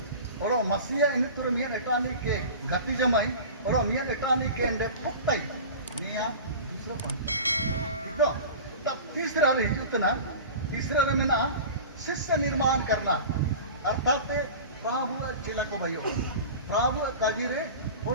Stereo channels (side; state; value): both; inverted; correlation -0.35